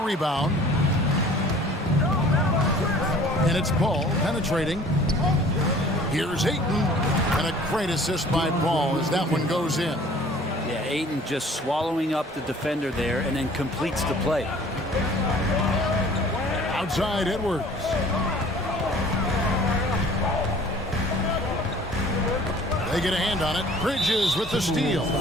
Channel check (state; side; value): normal; both; correlation 0.50